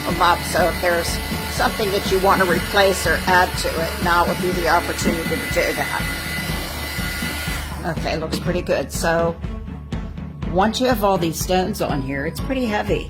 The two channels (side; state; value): both; identical; correlation 1.00